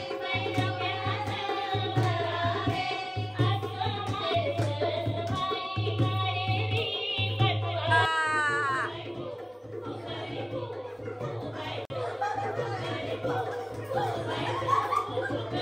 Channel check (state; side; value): identical; both; correlation 1.00